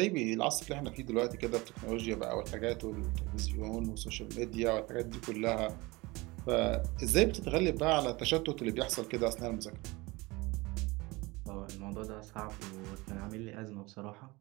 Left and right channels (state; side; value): quieter; left; 23.0 dB